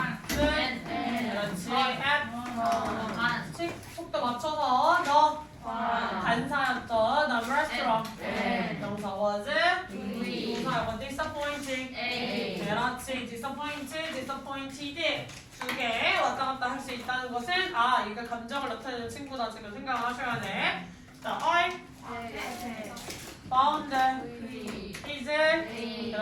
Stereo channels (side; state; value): both; identical; correlation 1.00